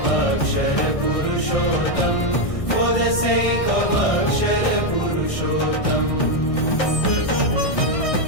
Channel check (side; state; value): right; late; 1.6 ms